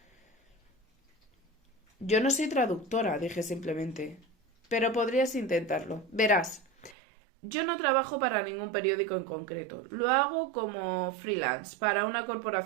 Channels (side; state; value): left; drops out; at 7.0 s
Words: Yo no soy traductora, dije simplemente, pero podrías intentarlo. Verás, yo no trabajo para ningún periódico en concreto. Lo hago como freelance para una